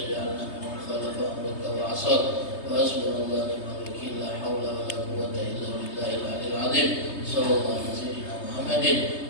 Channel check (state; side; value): late; right; 3.3 ms